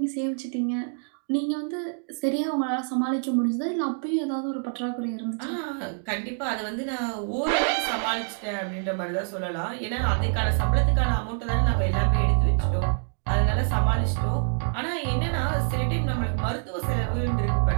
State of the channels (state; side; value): silent; left; 61 dB below the other